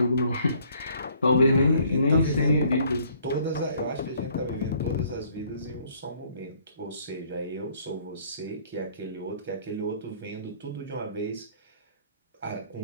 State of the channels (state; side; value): inverted; both; correlation -0.62